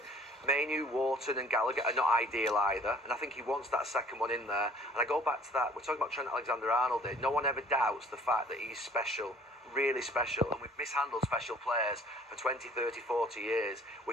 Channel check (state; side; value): normal; both; correlation 0.53